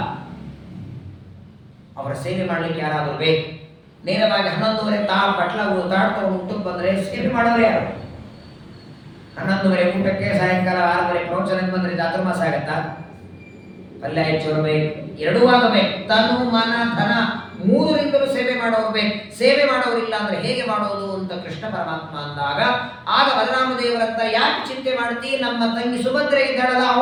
ಅವರ ಸೇವೆ ಮಾಡ್ಲಿಕ್ಕೆ ಯಾರಾದರೂ ಬೇಕು. ನೇರವಾಗಿ 11:30 ಬಟ್ಲಗಳು ತಾಡ್ತವ್ರು ಊಟಕ್ಕೆ ಬಂದ್ರೆ ಸೇವೆ ಮಾಡೋರು ಯಾರು? 11:30 ಊಟಕ್ಕೆ, ಸಾಯಂಕಾಲ 6:30 ಪ್ರವಚನಕ್ಕೆ ಬಂದ್ರೆ ಚಾತುರ್ಮಾಸ ಆಗತ್ತಾ? ಪಲ್ಯ ಹೆಚ್ಚು ಬೇಕು, ಎರಡೂ ಆಗಬೇಕು. ತನು ಮನ ಧನ 3ರಿಂದಲೂ ಸೇವೆ ಮಾಡೋರು ಬೇಕು. ಸೇವೆ ಮಾಡೋರಿಲ್ಲ ಅಂದ್ರೆ ಹೇಗೆ ಮಾಡೋದು ಅಂತ ಕೃಷ್ಣ ಪರಮಾತ್ಮ ಅಂದಾಗ, ಆಗ ಬಲರಾಮದೇವರಂತ, ಯಾಕೆ ಚಿಂತೆ ಮಾಡ್ತಿ? ನಮ್ಮ ತಂಗಿ ಸುಭದ್ರೆ ಇದ್ದಾಳಲ್ಲ,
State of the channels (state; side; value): identical; both; correlation 1.00